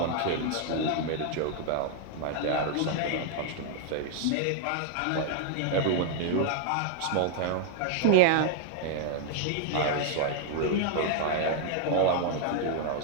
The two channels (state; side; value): different; both; correlation 0.00